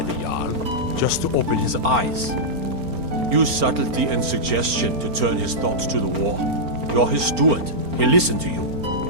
the Jarl, just to open his eyes. Use subtlety and suggestion to turn his thoughts to the war. You're his steward. He'll listen to you.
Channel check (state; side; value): late; left; 4.4 ms